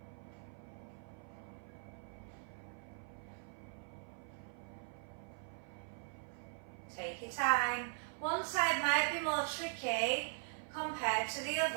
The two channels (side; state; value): left; silent; 51 dB below the other